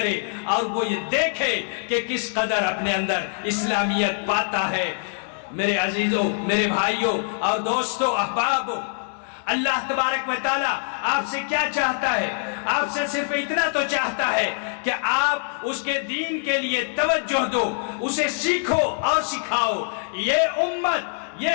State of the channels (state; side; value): silent; right; digital silence